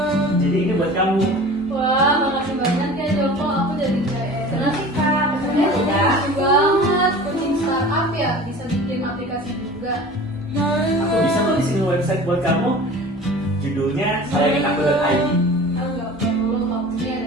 Jadi ini buat kamu. Wah, makasih banyak ya Joko, aku jadi kayak senang sih kak. Kesannya Udah. lucu banget, kucing startup ya, bisa bikin aplikasi juga. Aku bisa kok bikin website buat kamu. Judulnya sayanginaku.id. Enggak perlu,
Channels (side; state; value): both; normal; correlation 0.40